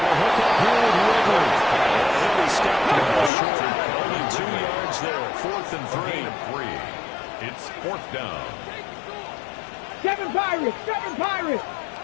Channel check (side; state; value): right; drops out; at 3.3 s